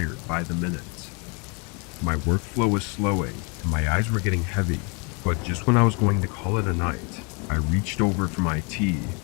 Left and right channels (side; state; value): right; quieter; 31.9 dB